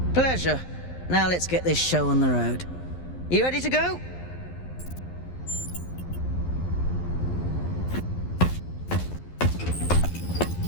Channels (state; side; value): late; right; 11 ms